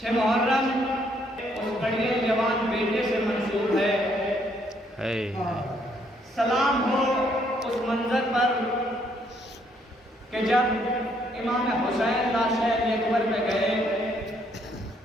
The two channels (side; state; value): both; normal; correlation 0.69